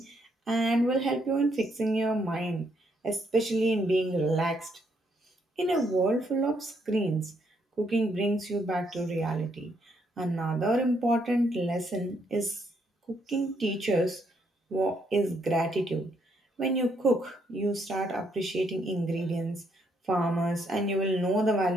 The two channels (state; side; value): normal; both; correlation 0.73